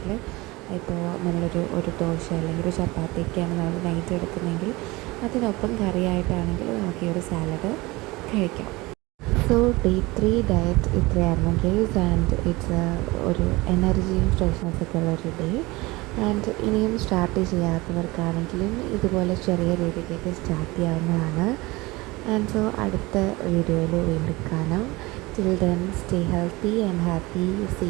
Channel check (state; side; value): quieter; left; 22.1 dB